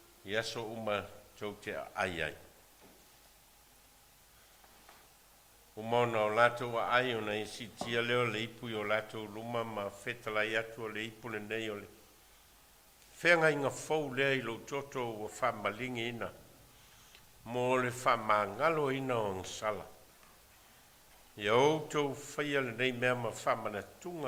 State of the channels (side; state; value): both; identical; correlation 1.00